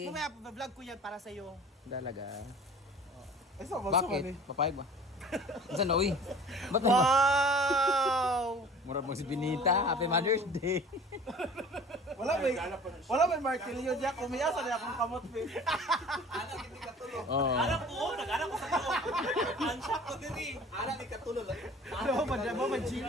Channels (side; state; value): both; normal; correlation 0.45